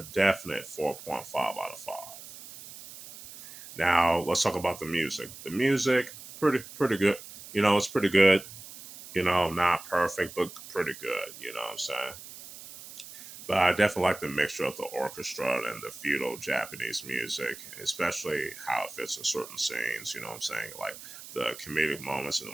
definite 4.5 out of 5. Now let's talk about the music. The music, pretty good. It's pretty good. Not perfect, but pretty good. You know what I'm saying? But I definitely like the mixture of the orchestra and the feudal Japanese music, especially how it fits in certain scenes. You know what I'm saying? Like the comedic moments and the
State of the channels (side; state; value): right; noise; hiss, 15 dB below the sound